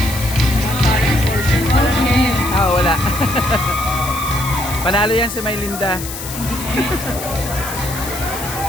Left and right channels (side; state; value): left; noise; hiss, 9 dB below the sound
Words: Okay. Wala. Panalo yan si Maylinda.